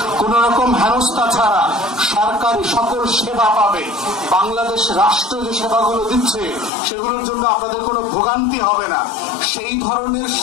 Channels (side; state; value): right; drops out; at 6.7 s